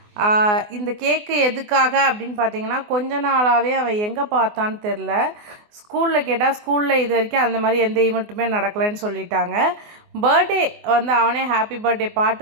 இந்த கேக்கு எதுக்காக அப்படின்னு பார்த்தீங்கன்னா, கொஞ்ச நாளாகவே அவன் எங்கே பார்த்தான்னு தெரில. ஸ்கூலில் கேட்டால் ஸ்கூலில் இது வரைக்கும் அந்த மாதிரி எந்த ஈவெண்ட்டுமே நடக்கலைன்னு சொல்லிட்டாங்க. பர்த்டே வந்து அவனே ஹாப்பி பர்த்டே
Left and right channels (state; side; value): late; left; 24 ms